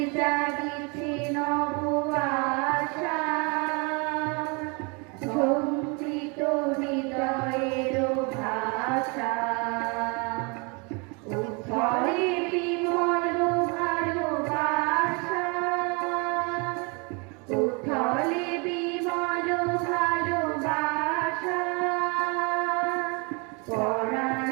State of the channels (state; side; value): quieter; left; 31.9 dB